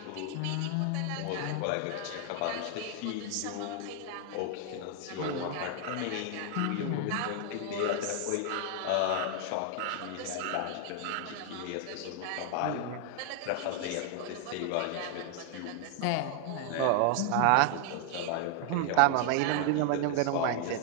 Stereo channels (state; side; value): different; both; correlation 0.00